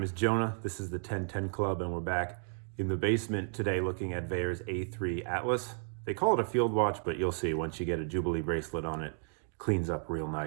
is Jonah. This is the 1010 Club, and we're back in the basement today looking at Vaer's A3 Atlas. They call it a field watch, but you'll see once you get a Jubilee bracelet on it, it cleans up real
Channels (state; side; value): silent; left; 56 dB below the other